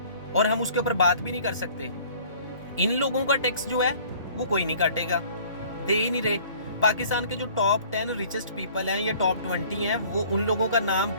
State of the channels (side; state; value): both; inverted; correlation -0.52